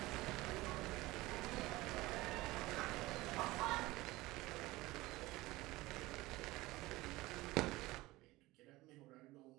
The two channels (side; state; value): left; quieter; 19.6 dB